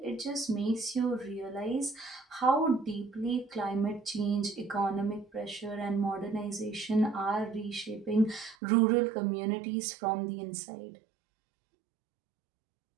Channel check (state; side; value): drops out; left; at 8.6 s